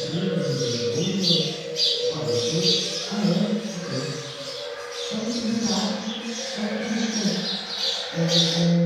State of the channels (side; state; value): both; identical; correlation 1.00